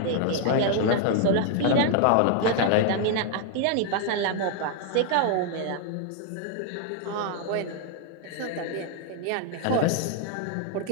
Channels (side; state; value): both; different; correlation 0.00